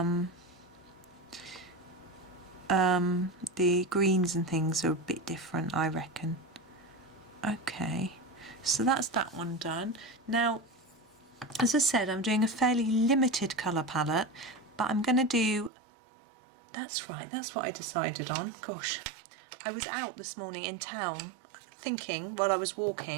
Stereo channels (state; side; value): drops out; left; at 15.7 s